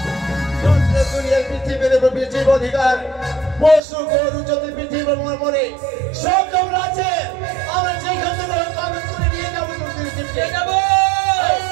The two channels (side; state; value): left; drops out; at 3.8 s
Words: পৃথিবীর অধিকার পশু গরু যত পৃথিবীর মরে সব তোমরা আছে। আমরা যেখান থেকে কাগজ করে নিয়ে যাবো